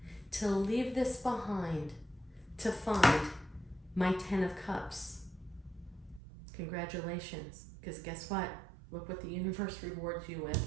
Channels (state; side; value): drops out; left; at 6.2 s